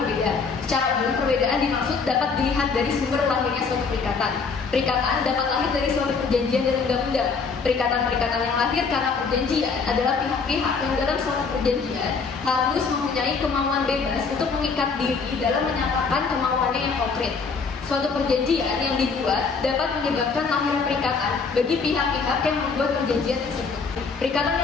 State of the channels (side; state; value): right; quieter; 5.0 dB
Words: Secara umum, perbedaan dimaksud dapat dilihat dari sumber lahirnya suatu perikatan. Perikatan dapat lahir dari suatu perjanjian dan undang-undang. Perikatan-perikatan yang lahir karena perjanjian adalah pihak-pihak yang dalam suatu perjanjian harus mempunyai kemauan bebas untuk mengikat diri dalam menyatakan kemauannya yang konkret. Suatu perjanjian yang dibuat dapat menyebabkan lahir perikatan bagi pihak-pihak yang membuat perjanjian tersebut. Perikatan